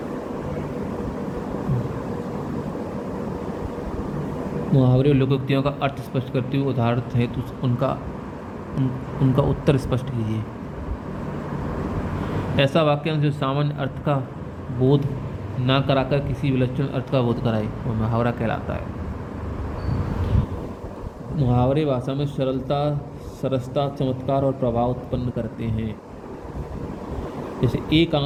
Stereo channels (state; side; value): identical; both; correlation 1.00